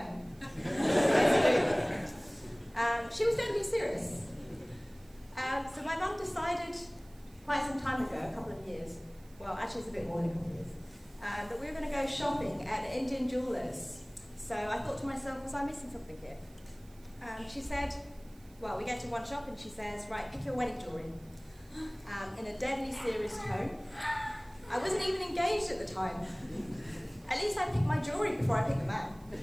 She was totally serious. So my mum decided quite some time ago, a couple of years, well actually it's a bit more than a couple of years, that we were going to go shopping at an Indian jeweller's. So I thought to myself, was I missing something here? She said, well, we get to one shop and she says, right, pick your wedding jewellery. In a deadly serious tone. I wasn't even engaged at the time. At least I picked my jewellery before I picked the man.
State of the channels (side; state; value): right; noise; hiss, 27 dB below the sound